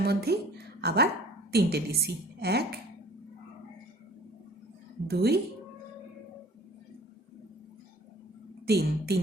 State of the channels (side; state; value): both; normal; correlation 0.49